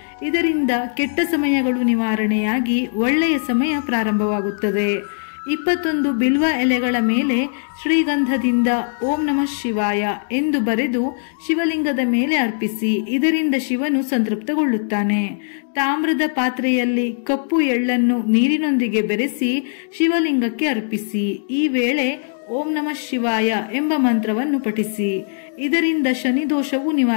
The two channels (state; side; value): silent; right; digital silence